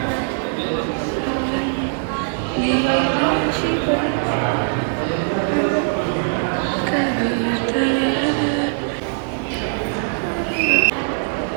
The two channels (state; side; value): silent; left; digital silence